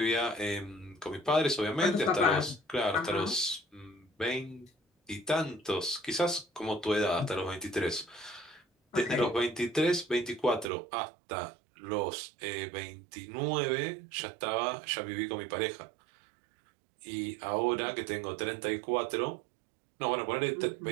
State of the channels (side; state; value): left; drops out; at 10.7 s